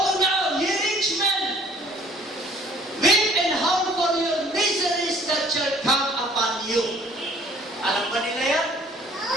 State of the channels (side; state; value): both; normal; correlation 0.56